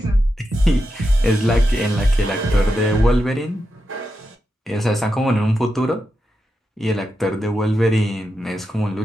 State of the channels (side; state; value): both; normal; correlation 0.87